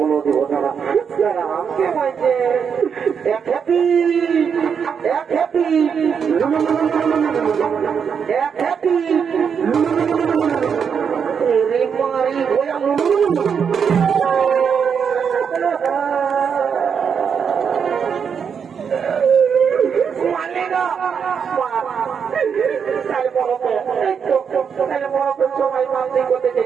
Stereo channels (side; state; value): left; quieter; 6.9 dB